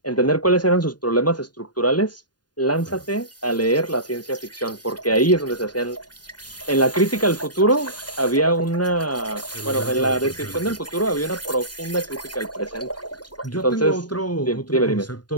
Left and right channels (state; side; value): late; right; 0.70 ms